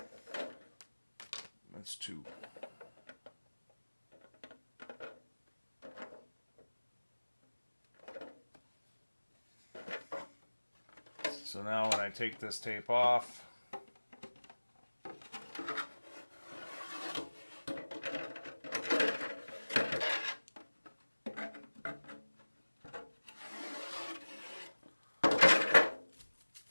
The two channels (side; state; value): both; inverted; correlation -1.00